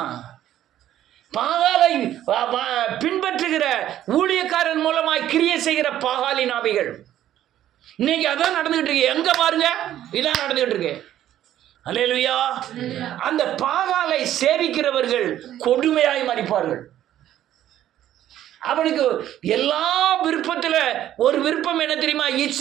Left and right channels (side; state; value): left; quieter; 12.1 dB